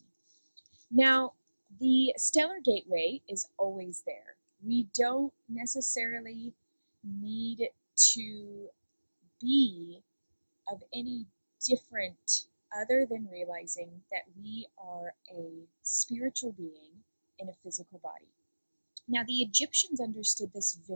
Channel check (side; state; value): both; inverted; correlation -1.00